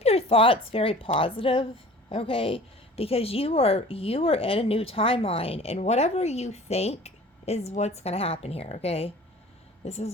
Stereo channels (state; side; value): normal; both; correlation 0.45